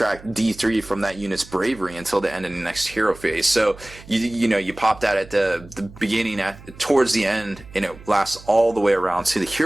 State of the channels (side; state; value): right; noise; hum, 20 dB below the sound